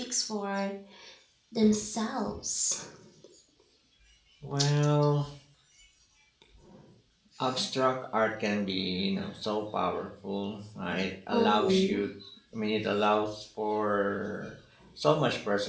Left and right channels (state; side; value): identical; both; correlation 1.00